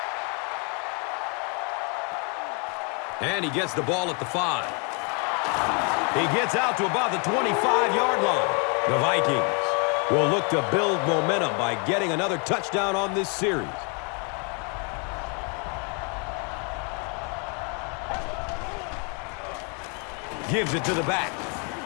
And he gets the ball at the 5. He gets out to about the 25-yard line. The Vikings will look to build momentum by getting another touchdown on this series. Gives it to the back.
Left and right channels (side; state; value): right; quieter; 36.1 dB